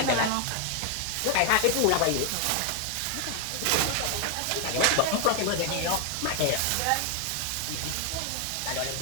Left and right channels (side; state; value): both; different; correlation 0.00